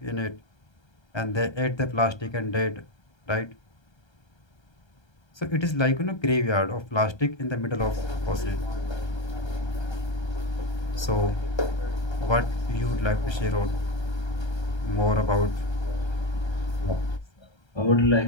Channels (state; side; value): late; right; 1.3 ms